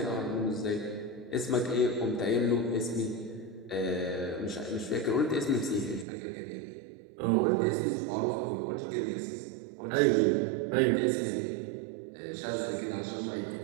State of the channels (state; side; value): drops out; left; at 6.1 s